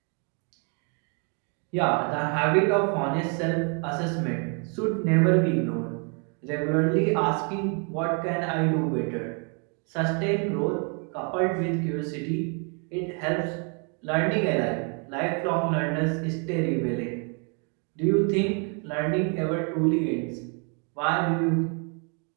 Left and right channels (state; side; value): quieter; left; 37.7 dB